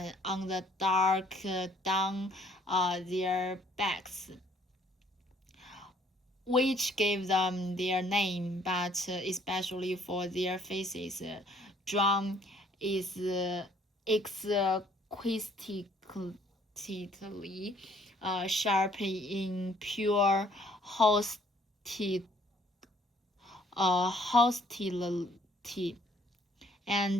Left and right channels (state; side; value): normal; both; correlation 0.62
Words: on the dark down their backs, which gave them their name, but especially for their faces. John is exquisitely sharp in pure hostility,